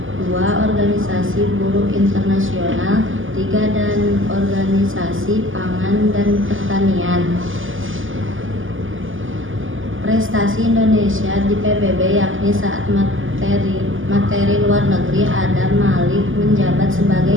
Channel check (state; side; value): late; left; 0.58 ms